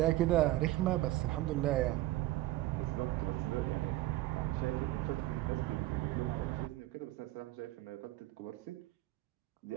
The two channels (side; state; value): left; quieter; 16.6 dB